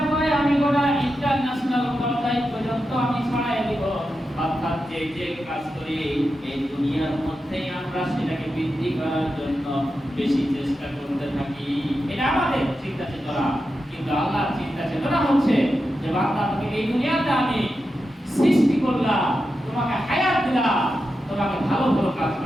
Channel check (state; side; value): normal; both; correlation 0.89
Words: করে যে কাজ করি এই দুনিয়ার মধ্যেই আমরা সেটাকে বৃদ্ধি করার জন্য বেশি চেষ্টা করতে থাকি। এটা আমাদের চিন্তা চেতনা, কিন্তু আল্লাহর চিন্তা চেতনা হচ্ছে যে বান্দা, তুমি এই দুনিয়াতে আমি সৃষ্টি করলাম, তোমাকে হায়াত দিলাম, তোমাকে ভালো ভালো কাজ